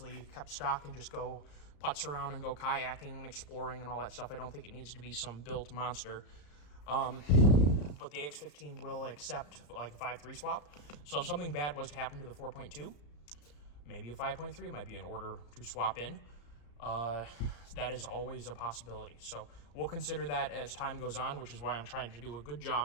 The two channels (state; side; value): late; right; 34 ms